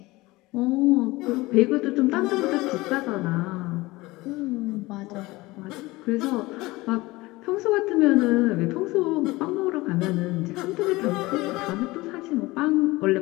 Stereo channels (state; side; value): quieter; right; 20.7 dB